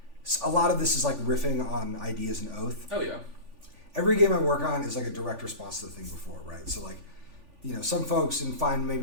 lot of this is like riffing on ideas in Oath. Oh yeah. Every game I work on is like a direct response to the thing before, right? So like, you know, some folks and find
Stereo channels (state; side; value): late; left; 3.5 ms